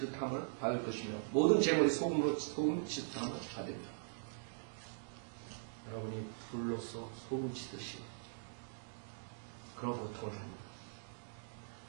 받을 것이며 모든 재물이 소금으로 소금 치듯함을 받으리라. 여러분이 불로서 소금 치듯이 그런 고통을 합니다.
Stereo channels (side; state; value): left; silent; digital silence